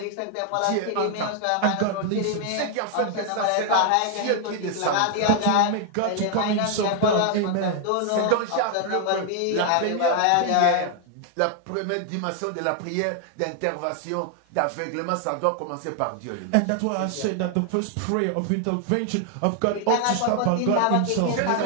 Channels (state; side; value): different; both; correlation 0.00